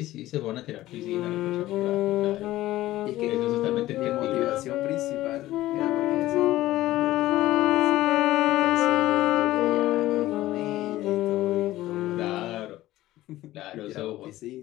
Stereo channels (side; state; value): right; quieter; 15.8 dB